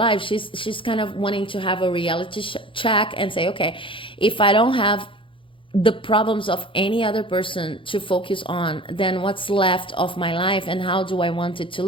She's kind of wanting to have a reality check and say, okay, if I don't have the problems of any other person to focus on, then what's left of my life, and how do I want it to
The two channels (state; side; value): late; right; 0.25 ms